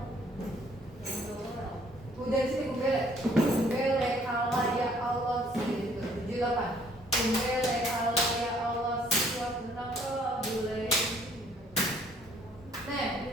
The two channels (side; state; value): both; normal; correlation 0.61